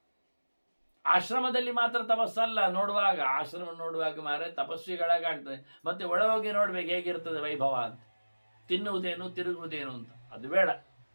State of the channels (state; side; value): inverted; both; correlation -1.00